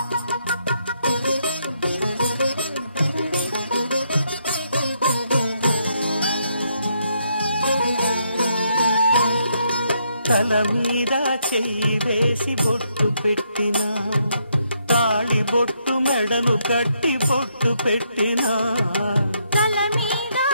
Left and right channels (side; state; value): both; inverted; correlation -0.75